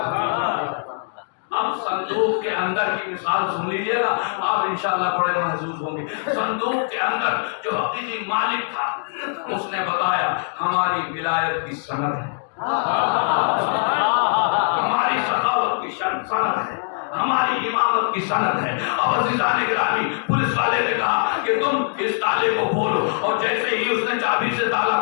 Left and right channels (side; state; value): right; silent; digital silence